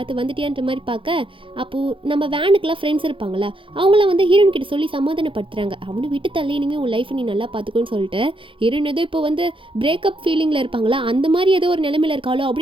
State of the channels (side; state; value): left; late; 0.25 ms